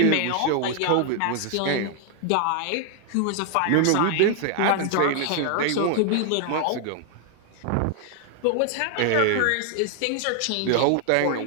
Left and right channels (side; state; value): both; different; correlation 0.00